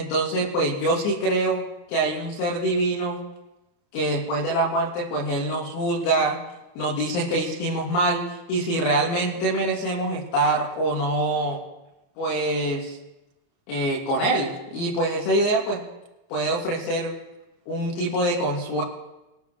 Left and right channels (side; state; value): right; late; 29 ms